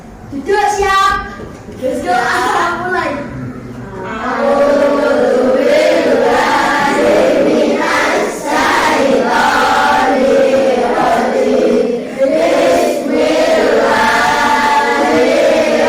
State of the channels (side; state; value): both; identical; correlation 1.00